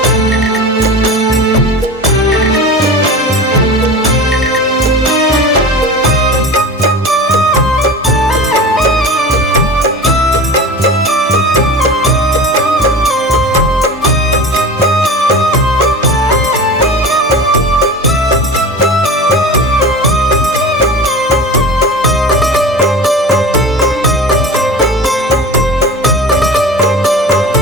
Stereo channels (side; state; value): both; normal; correlation 0.33